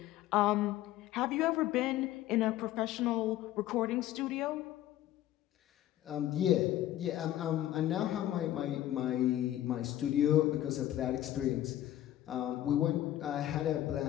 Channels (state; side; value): quieter; right; 13.4 dB